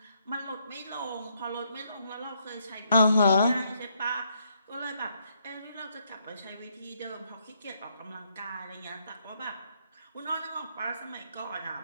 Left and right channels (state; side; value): inverted; both; correlation -0.74